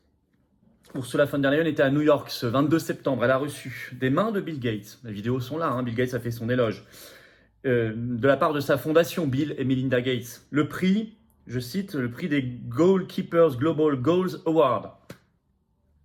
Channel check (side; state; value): both; identical; correlation 1.00